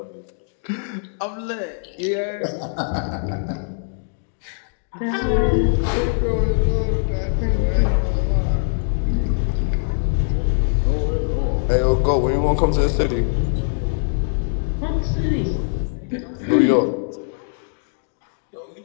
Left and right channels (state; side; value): silent; right; digital silence